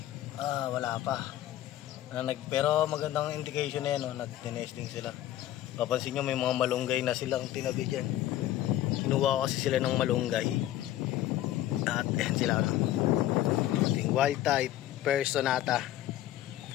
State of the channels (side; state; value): right; quieter; 13.6 dB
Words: Wala pa. Pero magandang indication na yan, no? Nag-nesting sila. Papansin nyo may mga malunggay na silang tinabi dyan. Kinuha ko kasi sila ng malunggay. At yan sila, no? Ating wild type Personata.